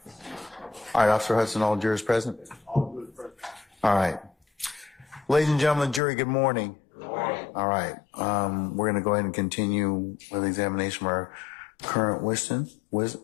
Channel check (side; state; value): right; drops out; at 6.0 s